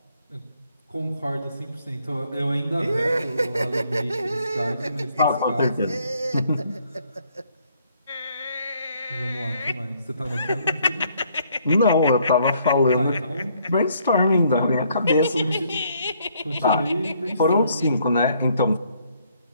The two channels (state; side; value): inverted; both; correlation -0.67